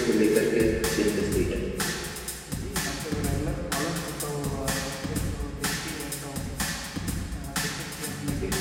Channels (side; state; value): both; identical; correlation 1.00